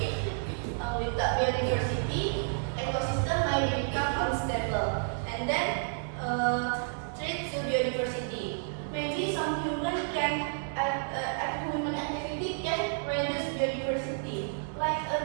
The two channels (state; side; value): silent; left; digital silence